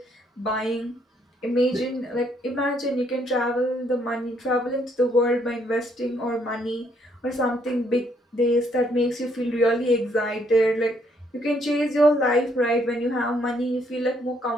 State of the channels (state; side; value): normal; both; correlation 0.70